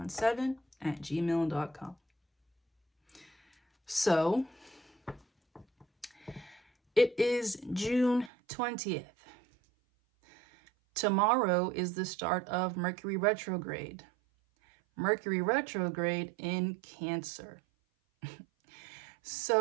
So, it is June 20th. Tomorrow is the start of Mercury retrograde. Mercury retrograde in Cancer.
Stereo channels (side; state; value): left; drops out; at 8.3 s